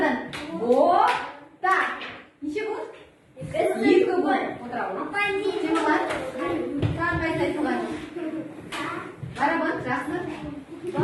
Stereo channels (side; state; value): both; identical; correlation 1.00